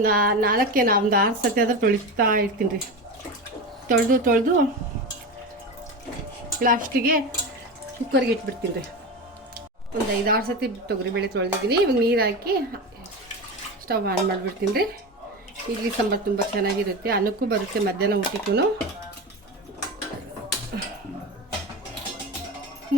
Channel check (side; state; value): both; normal; correlation 0.23